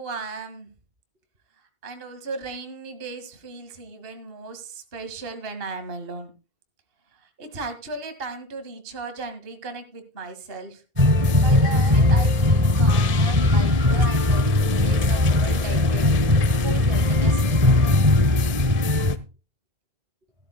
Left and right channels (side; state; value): left; late; 1.7 ms